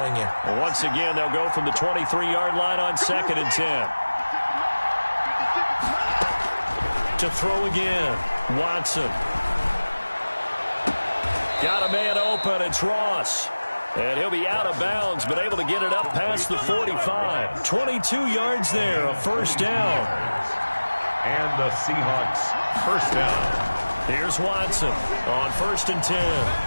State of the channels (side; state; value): both; inverted; correlation -1.00